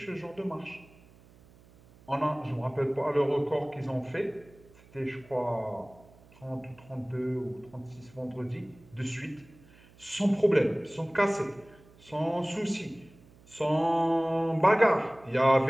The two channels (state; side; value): noise; right; hum, 26 dB below the sound